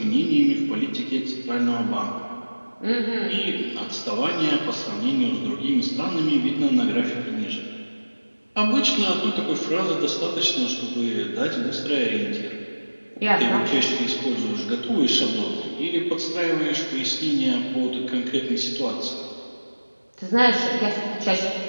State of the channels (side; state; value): both; inverted; correlation -1.00